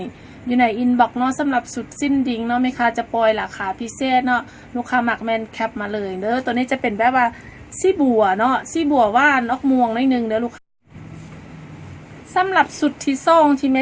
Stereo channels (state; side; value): identical; both; correlation 1.00